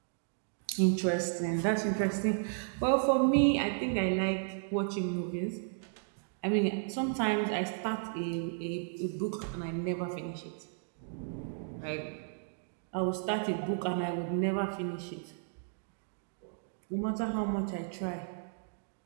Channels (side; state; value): left; silent; digital silence